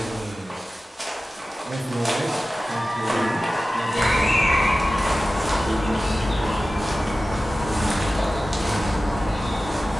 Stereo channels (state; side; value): normal; both; correlation 0.95